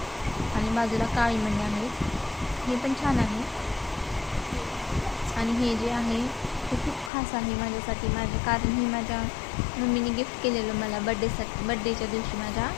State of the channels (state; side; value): drops out; right; at 7.1 s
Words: आणि बाजूला काळी मणी आहेत. हे पण छान आहे. आणि हे जे आहे ते खूप खास आहे माझ्यासाठी. कारण हे माझ्या मम्मीने गिफ्ट केलेलं मला बड्डेच्या दिवशी माझ्या.